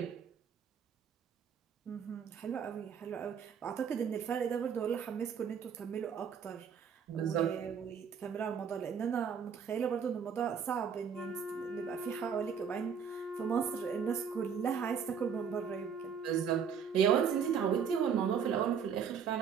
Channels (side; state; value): left; quieter; 7.1 dB